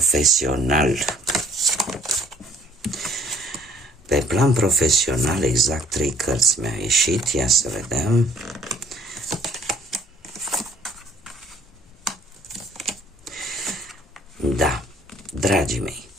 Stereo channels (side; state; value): both; normal; correlation 0.59